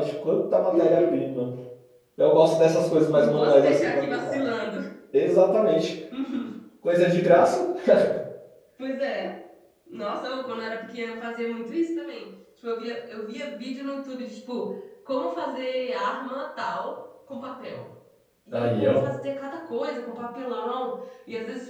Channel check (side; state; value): both; identical; correlation 1.00